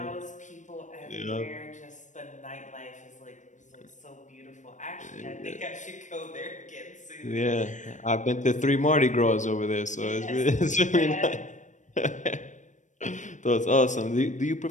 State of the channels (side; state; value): right; late; 0.36 ms